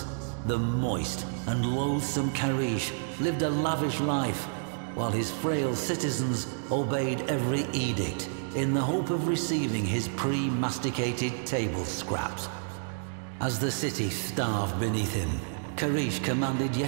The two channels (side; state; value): left; silent; digital silence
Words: the moist and loathsome Karish lived a lavish life, while his frail citizens obeyed every edict in the hope of receiving his pre-masticated table scraps. As the city starved beneath him, Karish commanded